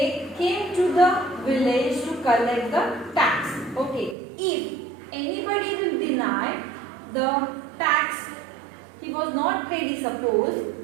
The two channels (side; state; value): left; drops out; at 4.2 s